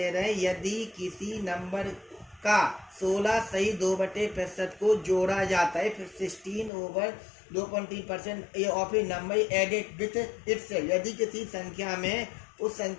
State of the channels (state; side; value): drops out; right; at 6.7 s